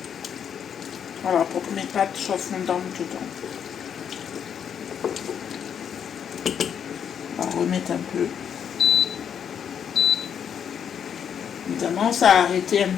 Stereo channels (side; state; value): right; quieter; 8.1 dB